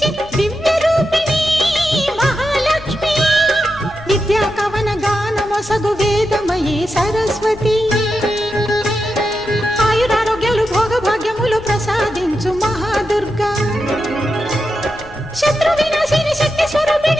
దివ్య రూపిణి మహాలక్ష్మి. విద్యా కవన గానమొసగు వేదమయీ సరస్వతి. ఆయురారోగ్యాలు భోగభాగ్యములు ప్రసాదించు మహాదుర్గా. శత్రు వినాశిని శక్తి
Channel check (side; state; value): left; noise; rumble, 19 dB below the sound